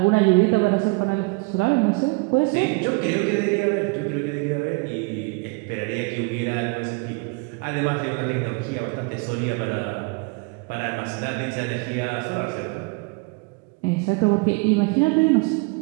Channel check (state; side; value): quieter; left; 29.5 dB